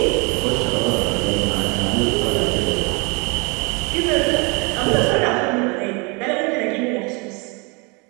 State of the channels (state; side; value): quieter; left; 30.4 dB